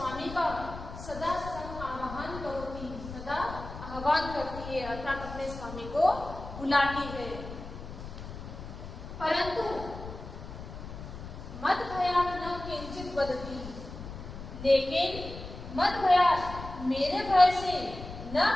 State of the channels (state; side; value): noise; left; rumble, 11 dB below the sound